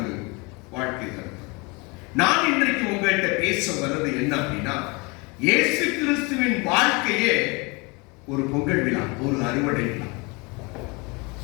வாழ்க்கை கருத்து. நான் இன்றைக்கு உங்கள்கிட்ட பேச வர்றது என்ன அப்படின்னா, இயேசு கிறிஸ்துவின் வாழ்க்கையே ஒரு பொங்கல் விழா, ஒரு அறுவடை விழா.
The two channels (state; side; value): quieter; right; 27.8 dB